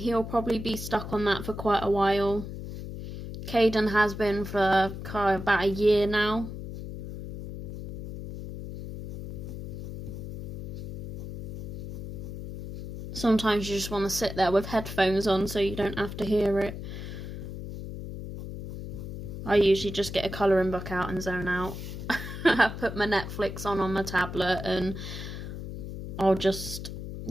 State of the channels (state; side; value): noise; left; hum, 8 dB below the sound